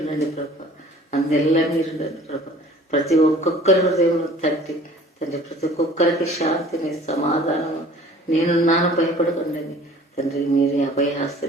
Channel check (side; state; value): both; normal; correlation 0.49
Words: ప్రభా, అందెల్లా మీరుండండి ప్రభా. ప్రతి ఒక్కొక్కరి హృదయంలో తట్టి తండ్రి ప్రతి ఒక్కొక్కరికి శాంతిని, సమాధానము, నేనున్నాను భయపడకండి తండ్రి. మీరే